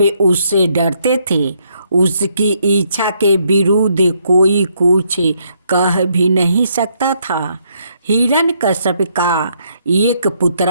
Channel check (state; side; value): inverted; both; correlation -0.73